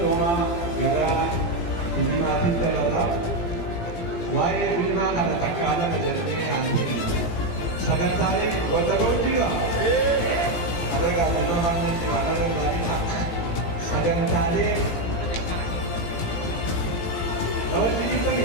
gara filmaatiin dabalaa waa'ee filmaa kana takkaadhaan jedhamee haasa'e sagantaaleen wanta ga'uun jira ada gaafannoo haanan jiwaanarra gaariidha sagantaaleen namatti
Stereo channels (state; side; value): late; right; 17 ms